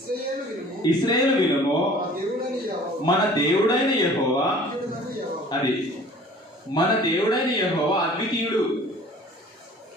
ఇశ్రాయేలు వినుము, మన దేవుడైన యెహోవా, అది మన దేవుడైన యెహోవా అద్వితీయుడు.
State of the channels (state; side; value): normal; both; correlation 0.48